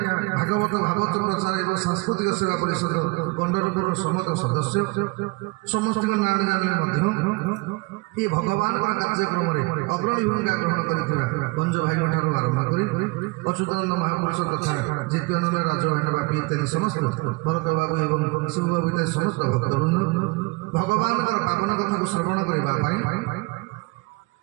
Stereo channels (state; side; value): quieter; left; 26.4 dB